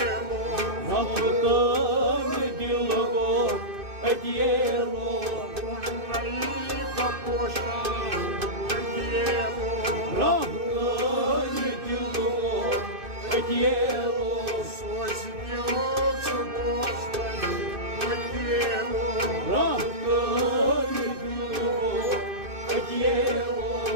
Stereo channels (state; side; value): late; left; 2.6 ms